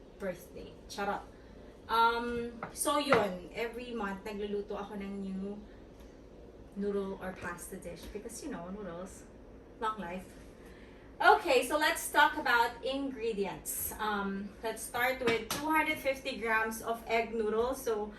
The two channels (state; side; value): identical; both; correlation 1.00